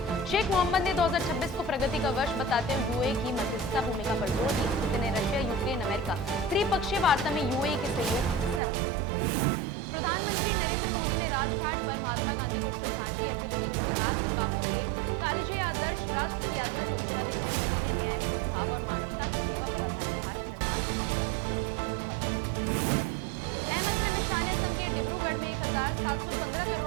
शेख मोहम्मद ने 2026 को प्रगति का वर्ष बताते हुए यूएई की मध्यस्थता भूमिका पर जोर दिया। पुतिन ने रशिया, यूक्रेन, अमेरिका त्रिपक्षीय वार्ता में यूएई के सहयोग की सराहना की। प्रधानमंत्री नरेंद्र मोदी ने राजघाट पर महात्मा गांधी को श्रद्धांजलि अर्पित की। उन्होंने कहा कि बापू के कालजे आदर्श राष्ट्र की यात्रा को दिशा देते हैं। मोदी ने न्याय, सद्भाव और मानवता की सेवा पर आधारित भारत निर्माण की संकल्प को दोहराया। गृह मंत्री अमित शाह ने असम के डिब्रूगढ़ में 1715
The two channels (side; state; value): left; drops out; at 8.6 s